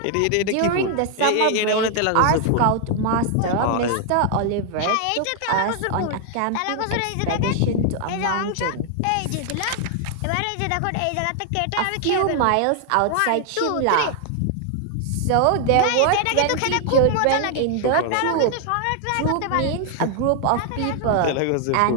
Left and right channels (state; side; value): different; both; correlation 0.00